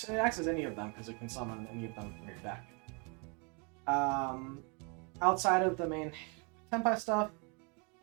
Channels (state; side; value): quieter; left; 33.9 dB